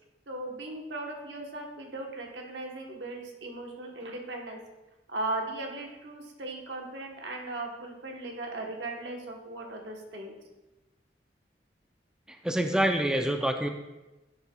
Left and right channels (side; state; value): both; normal; correlation 0.49